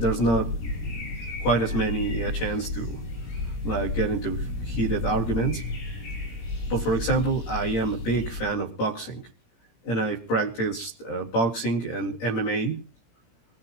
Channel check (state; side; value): late; right; 17 ms